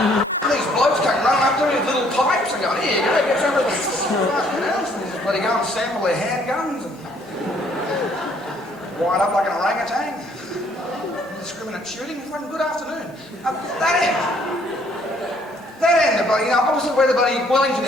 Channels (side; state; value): both; normal; correlation 0.64